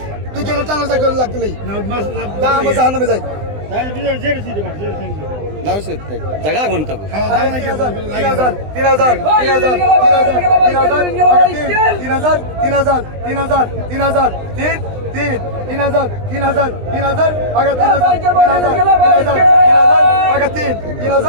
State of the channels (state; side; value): late; left; 20 ms